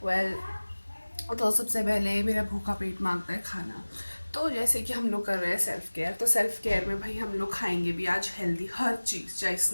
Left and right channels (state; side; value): inverted; both; correlation -1.00